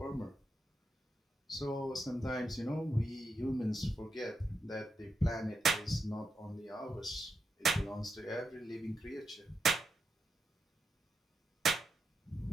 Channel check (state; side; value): normal; both; correlation 0.84